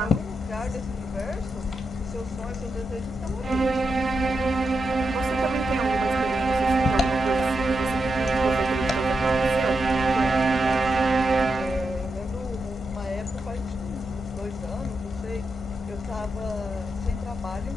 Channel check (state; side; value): normal; both; correlation 0.86